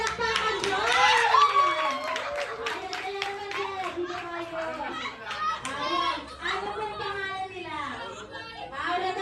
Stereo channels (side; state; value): both; identical; correlation 1.00